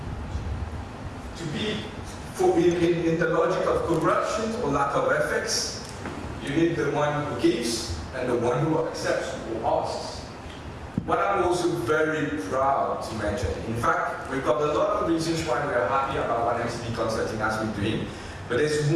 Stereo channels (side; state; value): both; identical; correlation 1.00